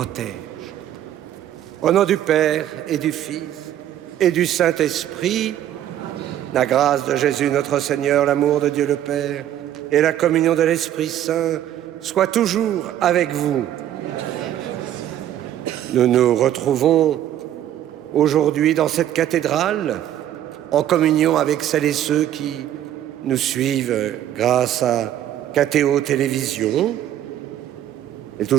Au nom du Père et du Fils et du Saint-Esprit, la grâce de Jésus notre Seigneur, l'amour de Dieu le Père et la communion de l'Esprit Saint soient toujours avec vous. Nous nous retrouvons aujourd'hui dans cette cathédrale en communion avec celles et ceux qui nous suivent grâce à KTO Télévision. C'est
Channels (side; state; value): left; quieter; 11.6 dB